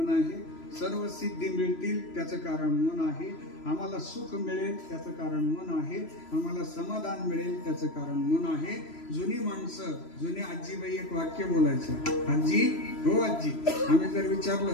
आहे. सर्व सिद्धी मिळतील त्याचं कारण मन आहे. आम्हाला सुख मिळेल त्याचं कारण मन आहे. आम्हाला समाधान मिळेल त्याचं कारण मन आहे. जुनी माणसं, जुनी आजीबाई एक वाक्य बोलायचं, आजी हो आजी, आम्ही जर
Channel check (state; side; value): late; right; 3.0 ms